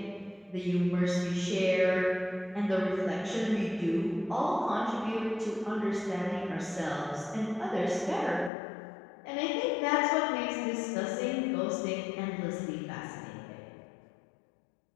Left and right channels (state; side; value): drops out; right; at 8.5 s